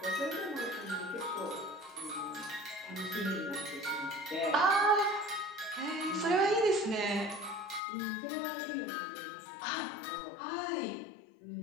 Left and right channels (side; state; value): right; drops out; at 7.8 s